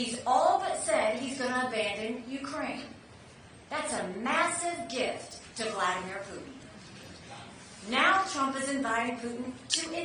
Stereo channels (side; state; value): both; identical; correlation 1.00